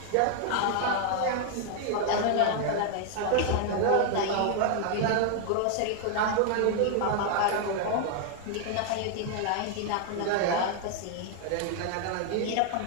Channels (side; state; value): both; different; correlation 0.00